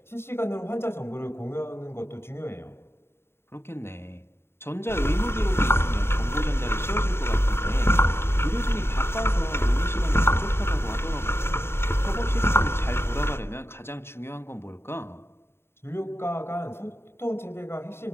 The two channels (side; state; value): right; late; 0.12 ms